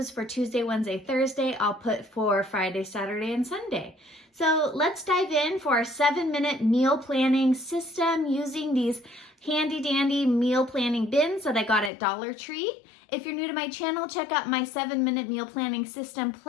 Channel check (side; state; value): right; drops out; at 11.9 s